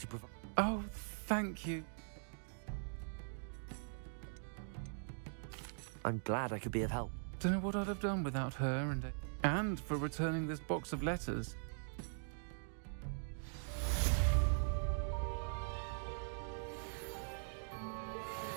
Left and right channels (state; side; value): silent; left; digital silence